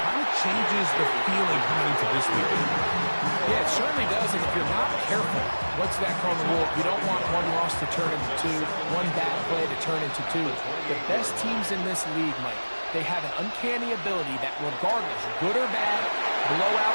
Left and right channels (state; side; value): inverted; both; correlation -1.00